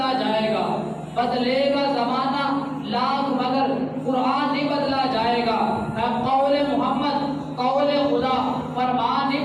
جائے گا، بدلے گا زمانہ لاکھ مگر قرآن نہیں بدلا جائے گا، قول محمد قول خدا فرمان نہیں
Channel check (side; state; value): both; identical; correlation 1.00